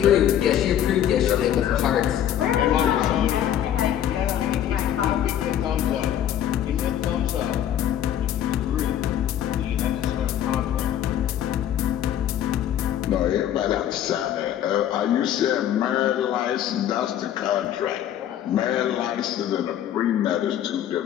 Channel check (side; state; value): right; quieter; 10.7 dB